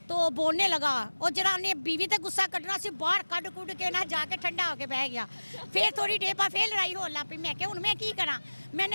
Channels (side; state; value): both; inverted; correlation -1.00